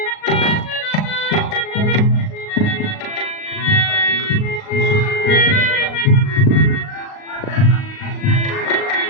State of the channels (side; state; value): right; late; 38 ms